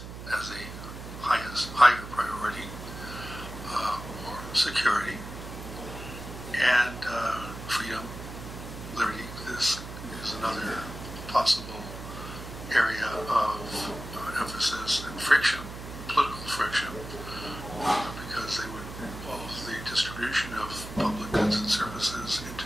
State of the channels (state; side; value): noise; right; hum, 10 dB below the sound